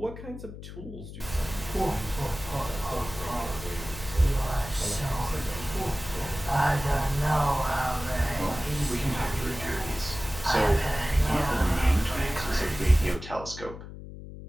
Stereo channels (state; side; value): noise; left; hum, 12 dB below the sound